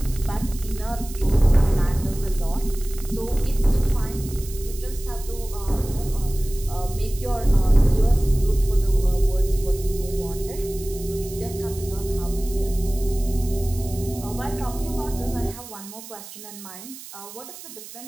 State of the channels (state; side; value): noise; right; hiss, 15 dB below the sound